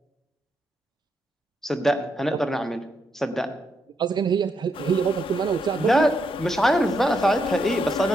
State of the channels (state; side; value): normal; both; correlation 0.79